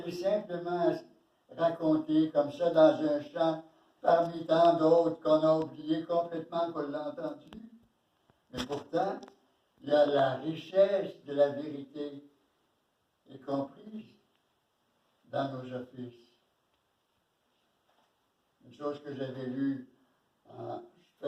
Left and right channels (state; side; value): identical; both; correlation 1.00